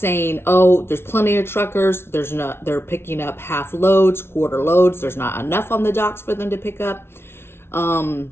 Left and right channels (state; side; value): late; right; 0.12 ms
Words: oh, there's plenty of truckers. They're picking up half loads, quarter loads. There's not enough on the docks for them to pick up.